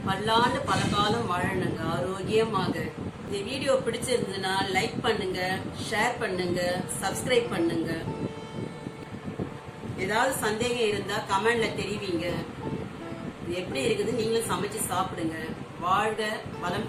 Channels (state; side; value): identical; both; correlation 1.00